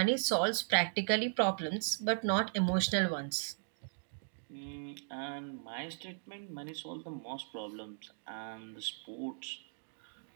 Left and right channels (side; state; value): left; silent; digital silence